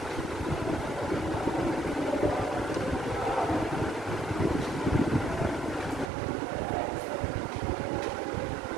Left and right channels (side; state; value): left; drops out; at 6.1 s